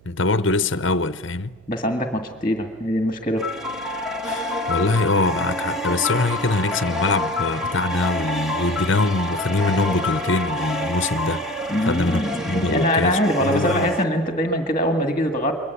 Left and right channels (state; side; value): noise; right; hum, 28 dB below the sound